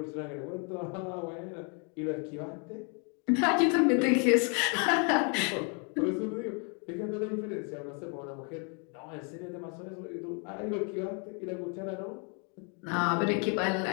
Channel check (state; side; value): quieter; right; 37.3 dB